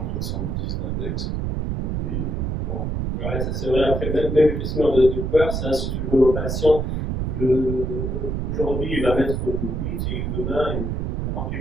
d'index. Et bon. Ouais, ça c'est vrai. Après, même le questionnaire de peur, c'est un surtout de nos patients. Aujourd'hui, il va mettre 8 et demain, il remplit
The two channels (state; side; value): noise; right; rumble, 1 dB below the sound